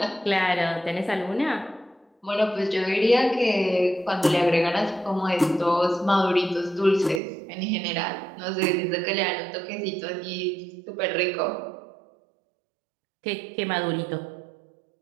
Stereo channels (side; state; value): left; drops out; at 7.2 s